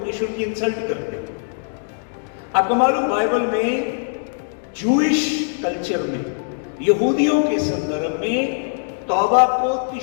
की इंसल्ट करते हैं। आपको मालूम, बाइबल में जूइश कल्चर में, यहूदियों के संदर्भ में तौबा को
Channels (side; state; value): right; silent; digital silence